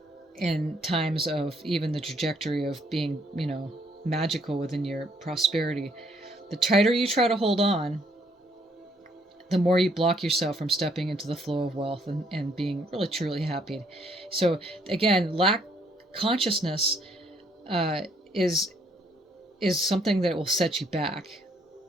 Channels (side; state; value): both; normal; correlation 0.68